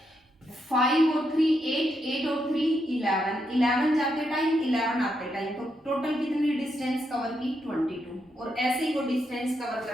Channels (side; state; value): both; normal; correlation 0.81